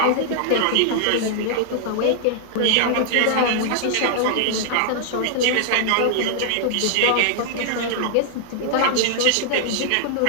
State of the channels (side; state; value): both; different; correlation -0.01